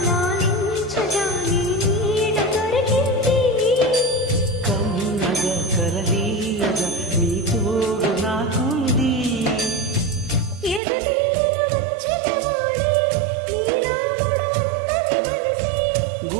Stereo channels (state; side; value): drops out; left; at 10.8 s